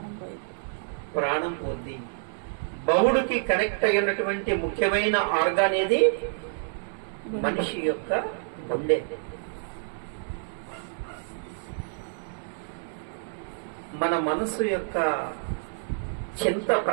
ప్రాణం పోద్ది. బౌడుకి కనెక్ట్ అయినటువంటి ముఖ్యమైన ఆర్గాన్ ఏది? మనిషి యొక్క గుండె. మన మనసు యొక్క చింత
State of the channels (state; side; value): silent; left; 59 dB below the other